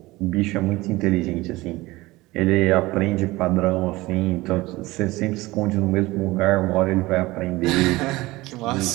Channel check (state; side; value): quieter; left; 20.0 dB